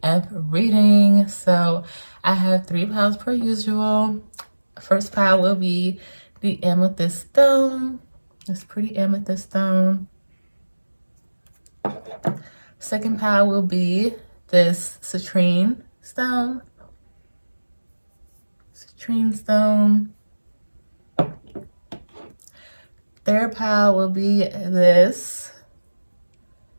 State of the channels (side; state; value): both; inverted; correlation -1.00